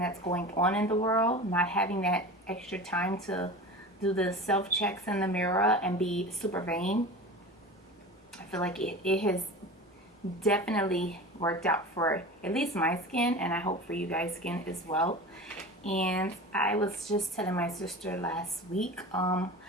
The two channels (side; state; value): both; normal; correlation 0.33